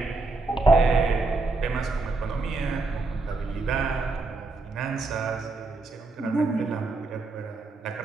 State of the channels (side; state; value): left; quieter; 3.5 dB